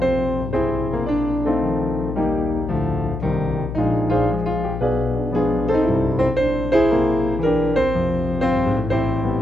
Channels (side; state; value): left; noise; hum, 6 dB below the sound